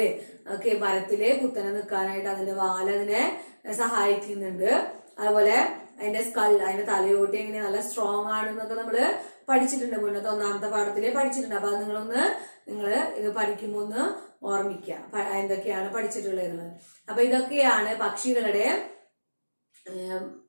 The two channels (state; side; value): inverted; both; correlation -1.00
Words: ഒക്കെ മരത്തില് കുത്തനെ നിൽക്കാനായിട്ട് അതിന്റെ വാല് അതിനെ സഹായിക്കുന്നുണ്ട്. അതുപോലെ അതിന്റെ സ്കൾ, അതിന്റെ തലയോട്ടി എങ്ങനെ നല്ല സ്ട്രോങ് ആണെന്നൊക്കെ നമ്മള് പഠിച്ചിട്ടുണ്ട്, മുന്നത്തെ 1ാമത്തെ പാഠത്തില് പഠിച്ചിട്ടുണ്ട്. അപ്പൊ അത് നിങ്ങള് ഇത് പഠിക്കുമ്പോ ഒന്ന് ഓർമ്മിക്കുക എന്തൊക്കെയാണ് പഠിച്ചിട്ടുള്ളത്. അപ്പൊ ഇതൊക്കെയാണ് പക്ഷികളുടെ